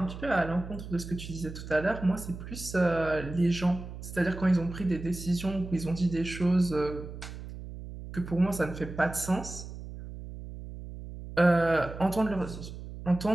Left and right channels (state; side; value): noise; right; hum, 11 dB below the sound